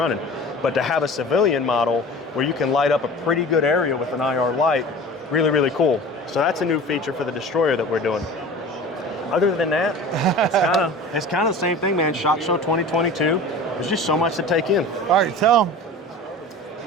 but to have a civilian model where you can light up a pretty good area with an IR light, really, really cool. So that's a new feature for the destroyer that we're doing. Other than that, it's kind of the same thing, man. SHOT Show 2022. There's just so much to take in. All right, tell them.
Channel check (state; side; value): normal; both; correlation 0.38